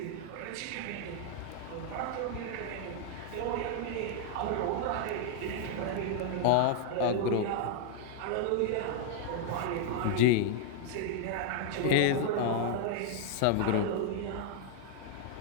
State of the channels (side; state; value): both; different; correlation 0.00